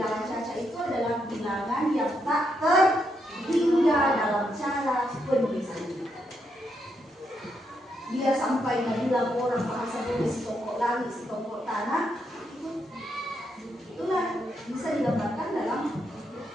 caca itu adalah bilangan yang tak terhingga dalam cara penulisan. Dia sampai bilang orang bahasa boleh setongkok langit, setongkok tanah, itulah bisa digambarkan dalam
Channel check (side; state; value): both; normal; correlation 0.79